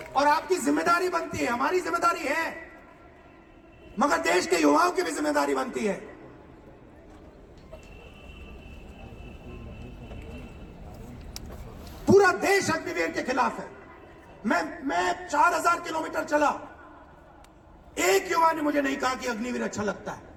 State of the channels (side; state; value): both; identical; correlation 1.00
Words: और आपकी जिम्मेदारी बनती है, हमारी जिम्मेदारी है, मगर देश के युवाओं की भी जिम्मेदारी बनती है। पूरा देश अग्निवीर के खिलाफ है। मैं 4000 किलोमीटर चला, एक युवा ने मुझे नहीं कहा कि अग्निवीर अच्छा लगता है।